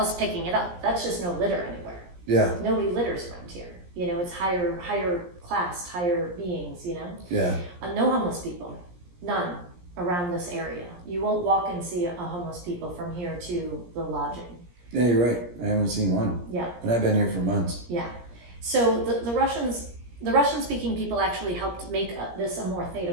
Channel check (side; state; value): left; late; 17 ms